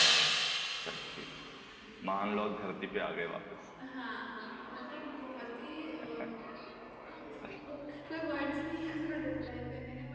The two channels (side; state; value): both; identical; correlation 1.00